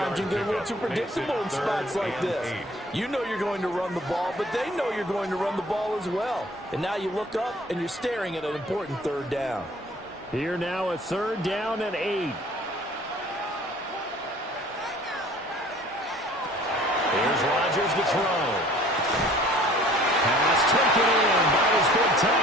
you can get a little too predictable in spots like this. You know you're going to run the ball, but they know you're going to run the ball as well. And now you look up and you're staring at an important third down. Here now a third down and 8. Here's Rodgers to throw. Pass taken in by his big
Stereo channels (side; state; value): both; normal; correlation 0.52